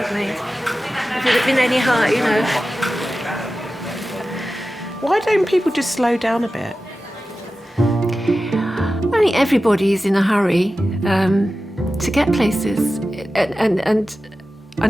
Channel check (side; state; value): both; normal; correlation 0.94